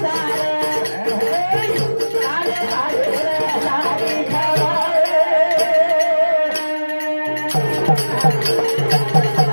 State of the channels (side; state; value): both; inverted; correlation -1.00